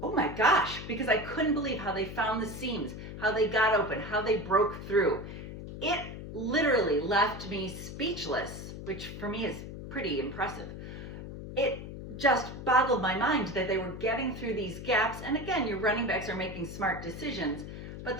oh my gosh, because I couldn't believe how they found the seams, how they got open, how they broke through. It literally left me speechless, which for me is pretty impressive. It just boggled my mind that they were getting through these gaps, and again, your running backs are making smart decisions, but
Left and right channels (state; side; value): noise; left; hum, 10 dB below the sound